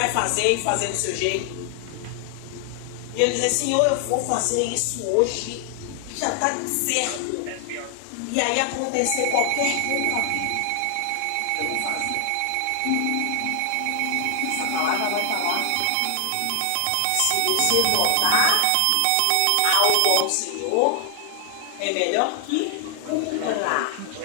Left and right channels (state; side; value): different; both; correlation 0.00